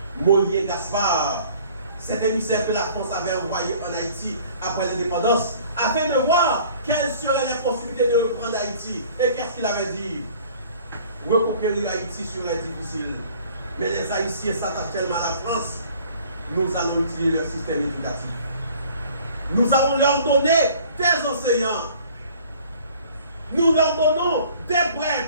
Mollier Gaspard, cet émissaire que la France avait envoyé en Haïti après l'indépendance, afin de voir quelles seraient les possibilités de reprendre Haïti. Et qu'est-ce qu'il avait dit? Reconquérir Haïti serait difficile. Mais les Haïtiens s'attachent tellement à la France, nous allons utiliser leur système éducatif. Nous allons leur donner des enseignants. Nous leur donnons des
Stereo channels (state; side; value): inverted; both; correlation -0.52